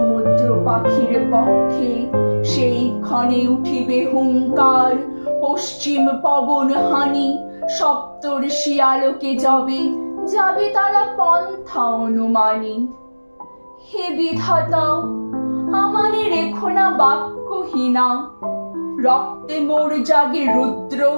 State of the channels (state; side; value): inverted; both; correlation -1.00